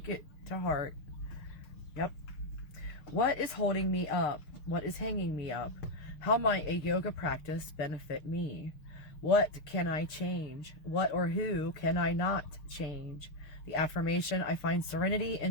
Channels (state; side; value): late; right; 6.6 ms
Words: it to heart. Yep. What is holding me up? What is hanging me up? How might a yoga practice benefit me? What can I change? What or who can I not change? The affirmation, I find serenity